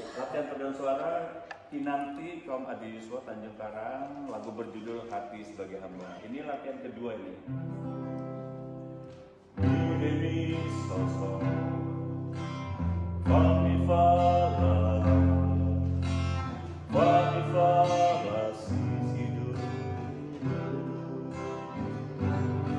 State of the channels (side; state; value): both; identical; correlation 1.00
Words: Latihan paduan suara Kinanti kaum Adi Yuswa Tanjung Karang, lagu berjudul Hati Sebagai Hamba. Ini latihan kedua ini. Demi sosok Fami fala sisidu.